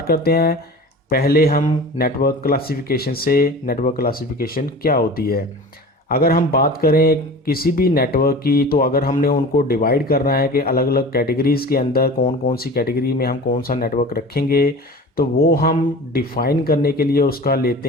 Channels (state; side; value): normal; both; correlation 0.37